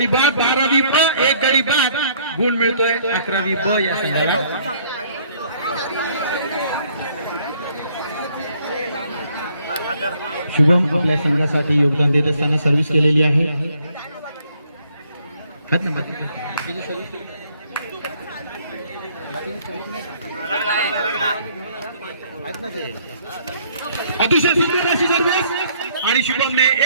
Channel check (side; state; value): both; inverted; correlation -0.63